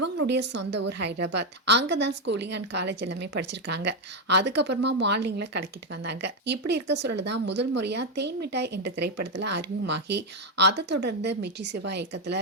சொந்த ஊர் ஹைதராபாத். அங்கதான் ஸ்கூலிங் அண்ட் காலேஜ் எல்லாமே படிச்சிருக்காங்க. அதுக்கப்புறமா மாடலிங்ல கலக்கிட்டு வந்தாங்க. இப்படி இருக்க சூழல் தான் முதல் முறையா தேன் மிட்டாய் என்ற திரைப்படத்துல அறிமுகமாகி அதை தொடர்ந்து மிர்ச்சி சிவா இயக்கத்துல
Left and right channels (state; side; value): normal; both; correlation 0.05